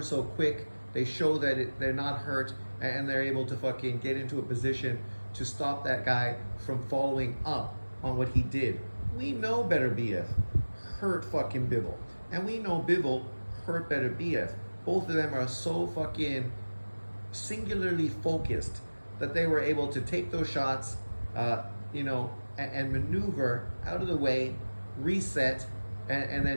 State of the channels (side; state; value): both; inverted; correlation -1.00